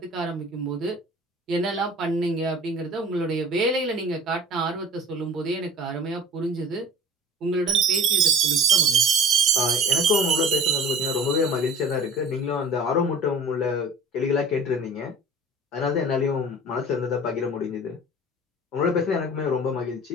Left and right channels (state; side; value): normal; both; correlation 0.43